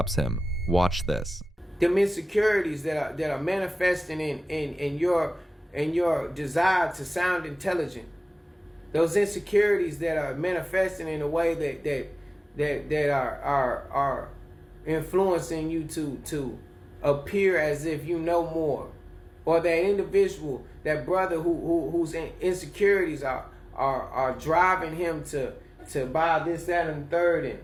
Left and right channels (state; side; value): normal; both; correlation 0.98